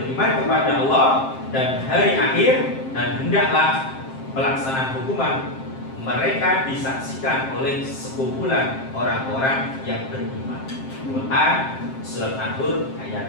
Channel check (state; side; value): late; right; 7.6 ms